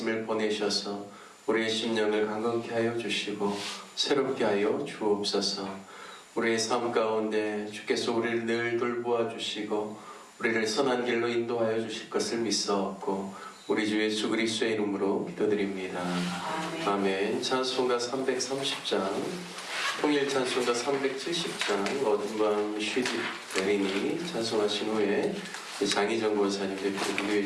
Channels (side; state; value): both; identical; correlation 1.00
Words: 보내셔서 우리의 심령을 강건케 하여 주시고 새롭게 하여 주옵소서. 우리의 삶 가운데 주께서 우리를 늘 돌보아 주시고 우리를 선한 길로 인도하여 주실 것을 믿사옵고 우리 주 예수 그리스도의 이름으로 기도드립니다. 아멘. 찬송가 330장, 통일 찬송가 370장, 어둠 밤 쉬지 내리니 찬송하신 후에 장희정 권사님 대표로